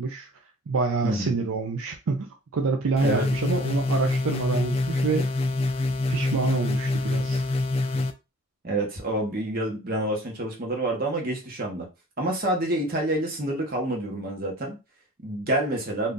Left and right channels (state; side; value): normal; both; correlation 0.49